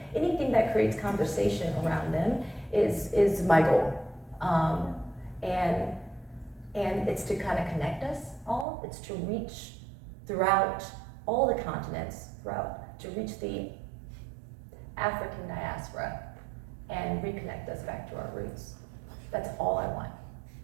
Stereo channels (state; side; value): drops out; left; at 8.7 s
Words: Anything that creates conversation around them is my goal. And it's to kind of connect us all. It's to reach throughout all the continents, to reach the African diaspora and reconnect us back to our roots. That's all I want.